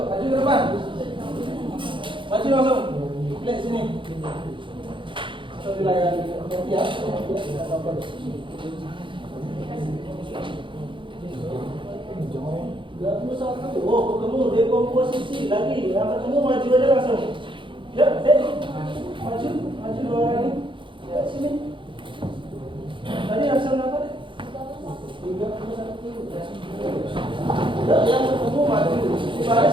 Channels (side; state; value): left; late; 0.24 ms